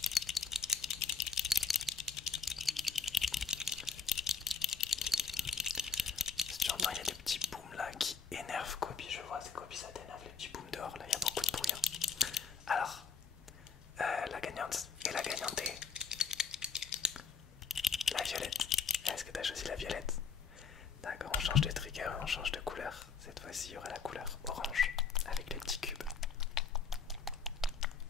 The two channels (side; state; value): right; quieter; 5.7 dB